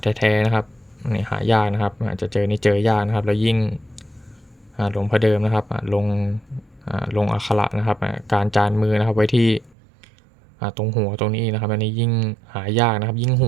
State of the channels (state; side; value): drops out; left; at 9.8 s